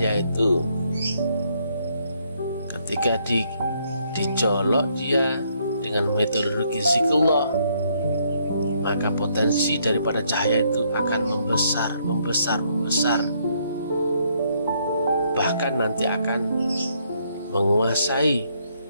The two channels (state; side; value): inverted; both; correlation -0.71